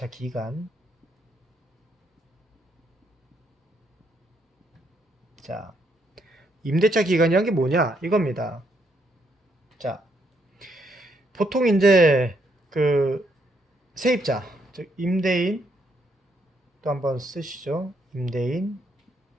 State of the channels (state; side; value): normal; both; correlation 0.74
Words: 기간. 자, 임대차 기간이란 게 뭐냐? 이겁니다. 자, 보통 이제 그 세입자, 즉 임대인 또 한번 쓰시죠. 임대인,